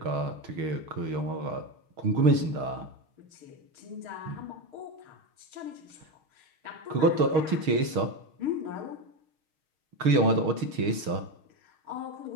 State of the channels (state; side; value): late; left; 6.4 ms